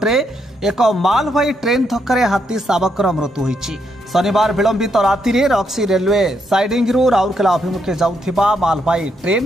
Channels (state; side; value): normal; both; correlation 0.77